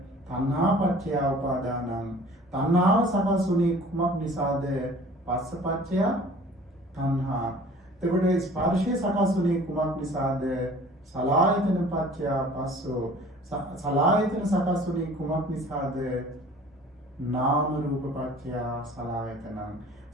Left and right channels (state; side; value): normal; both; correlation 0.48